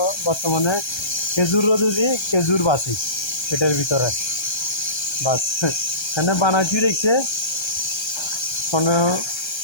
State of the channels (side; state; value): right; late; 1.3 ms